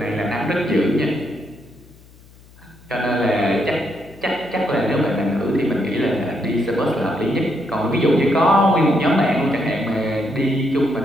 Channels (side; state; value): left; noise; hum, 25 dB below the sound